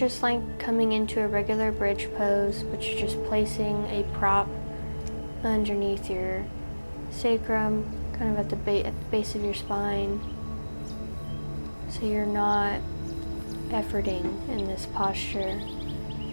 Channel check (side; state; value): both; inverted; correlation -1.00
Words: like coming into a regular bridge pose, but you're just placing a prop underneath your sacrum, kind of at the base of your spine. So you're not efforting in this posture.